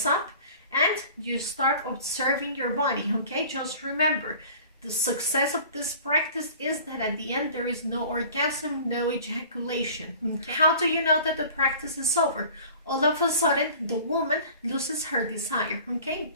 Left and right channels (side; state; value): both; inverted; correlation -0.45